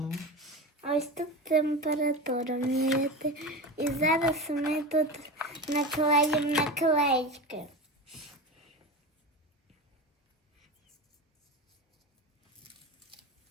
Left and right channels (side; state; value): both; normal; correlation 0.25